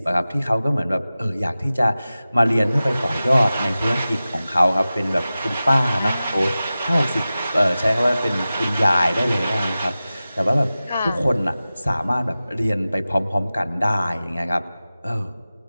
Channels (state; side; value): inverted; both; correlation -0.95